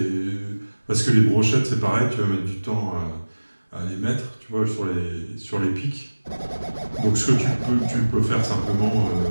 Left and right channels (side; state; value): both; inverted; correlation -1.00